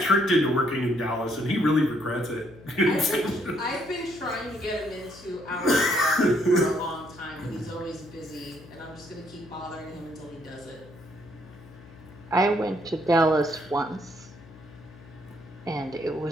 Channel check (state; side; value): noise; left; hum, 21 dB below the sound